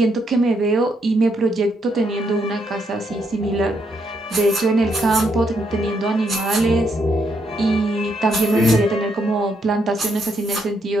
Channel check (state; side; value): normal; both; correlation 0.76